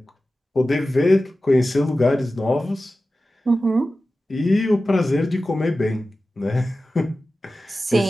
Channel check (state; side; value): normal; both; correlation 0.94